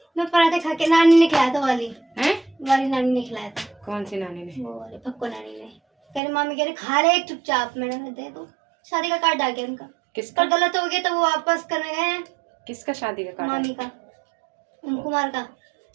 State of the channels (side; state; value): left; drops out; at 6.2 s